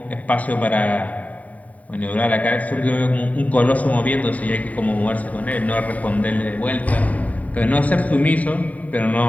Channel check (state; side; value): late; right; 0.070 ms